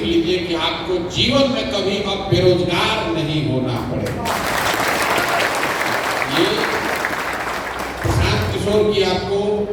लीजिए कि आपको जीवन में कभी अब बेरोजगार नहीं होना पड़ेगा। ये प्रशांत किशोर की आपको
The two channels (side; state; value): both; identical; correlation 1.00